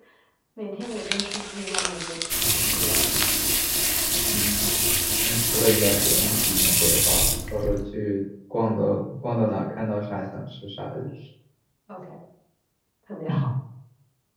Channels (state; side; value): identical; both; correlation 1.00